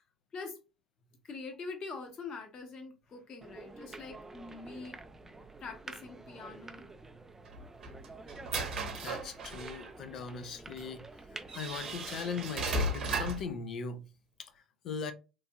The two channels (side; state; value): both; normal; correlation 0.30